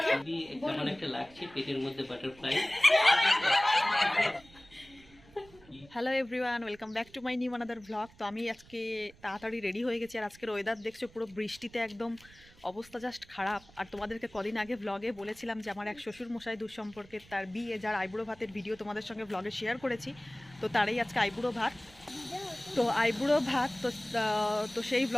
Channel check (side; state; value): right; noise; rumble, 24 dB below the sound